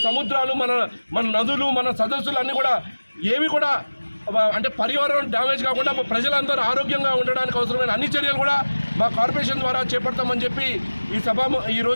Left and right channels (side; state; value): both; inverted; correlation -1.00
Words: సముద్రాలు మన నదులు మన సదస్సులు అన్నీ కూడా ఏవి కూడా అంటే పర్యావరణం డ్యామేజ్ కాకుండా ప్రజలందరూ ఆరోగ్యంగా ఉండడానికి అవసరమైన అన్ని చర్యలు కూడా మా కార్పొరేషన్ ద్వారా చేపడతామని చెప్పి ఈ